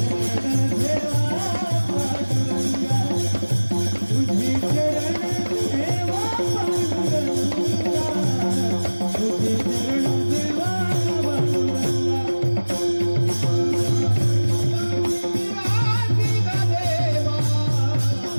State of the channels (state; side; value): inverted; both; correlation -1.00